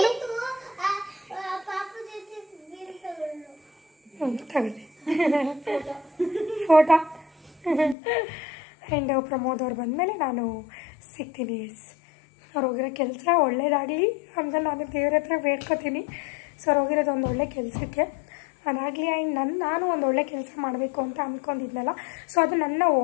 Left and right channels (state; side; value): drops out; right; at 8.0 s